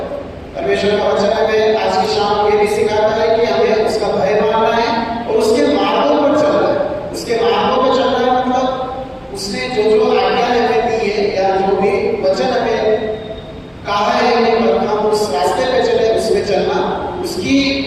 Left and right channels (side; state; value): both; identical; correlation 1.00